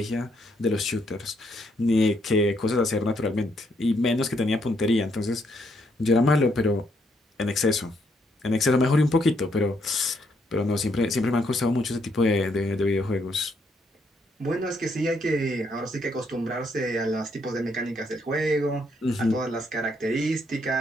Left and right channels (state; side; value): normal; both; correlation 0.74